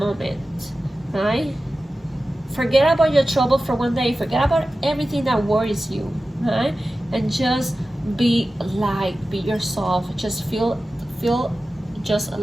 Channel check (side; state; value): both; normal; correlation 0.94